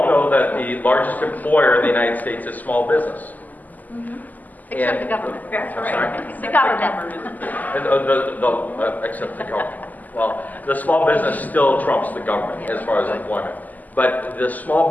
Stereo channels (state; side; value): late; right; 0.081 ms